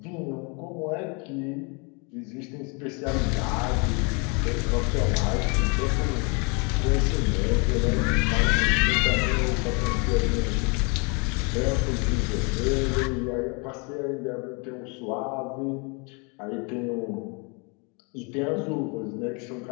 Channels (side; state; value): right; quieter; 32.7 dB